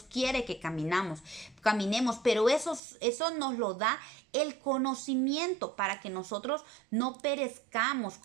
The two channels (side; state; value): left; drops out; at 2.8 s